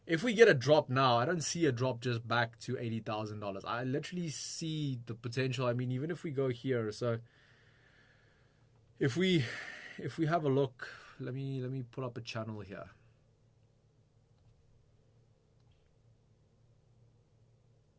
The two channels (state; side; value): identical; both; correlation 1.00